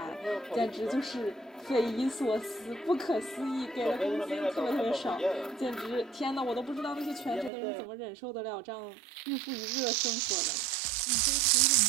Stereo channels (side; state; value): left; drops out; at 7.5 s